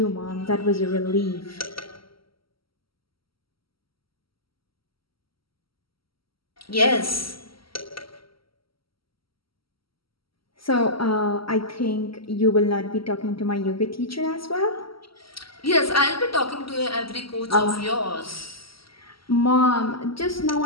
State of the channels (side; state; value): right; late; 0.75 ms